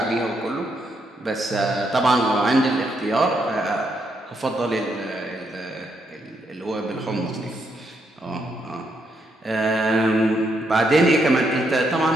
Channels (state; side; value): normal; both; correlation 0.77